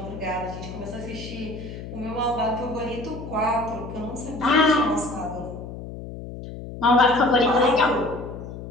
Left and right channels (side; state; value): left; noise; hum, 10 dB below the sound